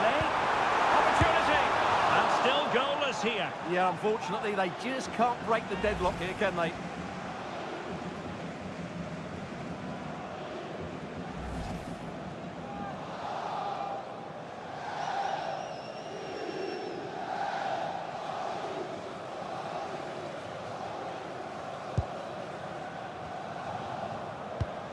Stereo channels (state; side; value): identical; both; correlation 1.00